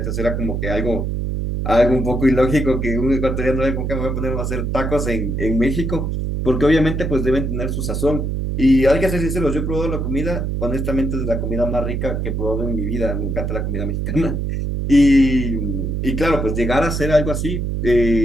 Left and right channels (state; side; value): noise; right; hum, 1 dB below the sound